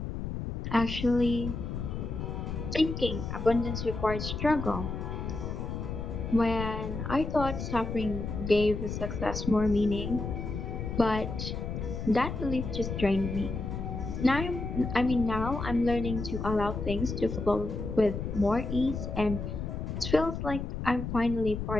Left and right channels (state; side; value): noise; left; rumble, 5 dB below the sound